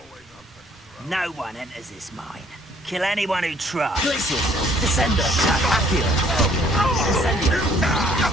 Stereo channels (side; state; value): both; normal; correlation 0.61